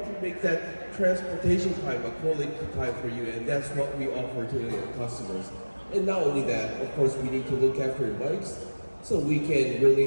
to make that transportation time a quality time for you, and that's what we offer to the customers. And not only that, of course, we need to look after your bikes so we can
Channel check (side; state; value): both; inverted; correlation -1.00